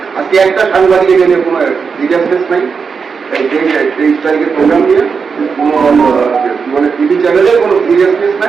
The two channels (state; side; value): quieter; left; 5.6 dB